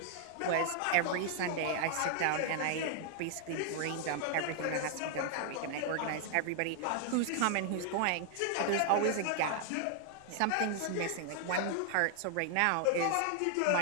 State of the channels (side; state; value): both; different; correlation 0.00